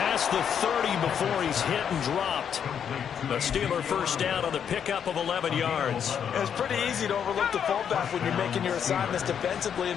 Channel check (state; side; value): quieter; right; 8.1 dB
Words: the 30 before he's hit and dropped. A Steeler first down on the pickup of 11 yards. It's pretty easy to overlook the fullback when you're making your assignments defensively in